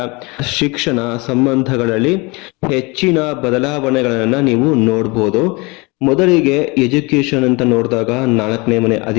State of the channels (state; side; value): quieter; right; 26.5 dB